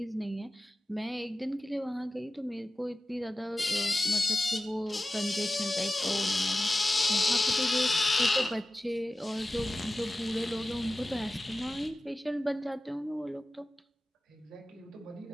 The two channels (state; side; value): normal; both; correlation 0.95